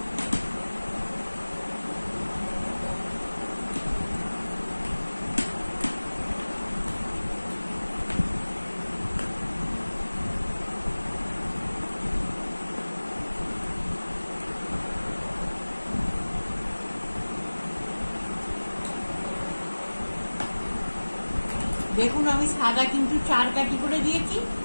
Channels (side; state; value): both; inverted; correlation -1.00